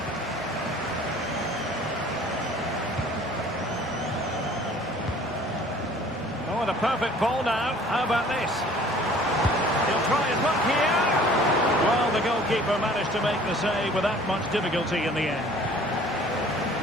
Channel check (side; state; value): both; normal; correlation 0.51